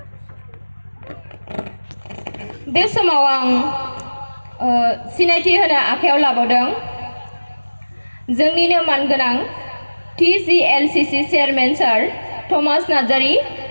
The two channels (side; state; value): both; inverted; correlation -1.00